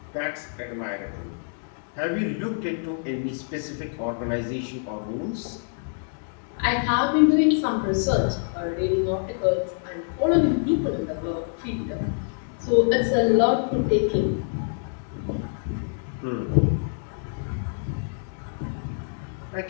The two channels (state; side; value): silent; right; digital silence